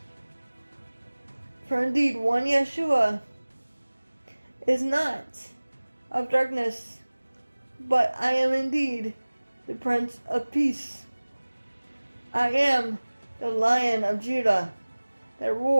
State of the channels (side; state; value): both; inverted; correlation -1.00